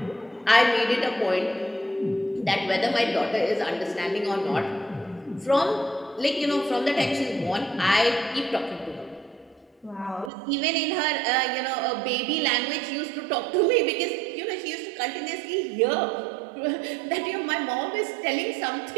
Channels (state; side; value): drops out; left; at 10.3 s